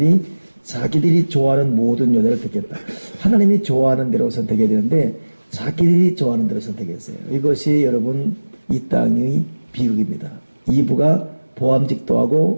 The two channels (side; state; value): both; inverted; correlation -1.00